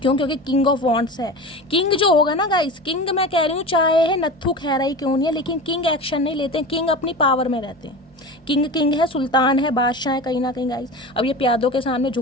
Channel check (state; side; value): normal; both; correlation 0.30